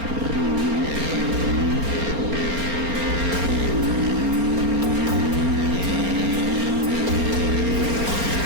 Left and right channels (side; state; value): left; late; 4.3 ms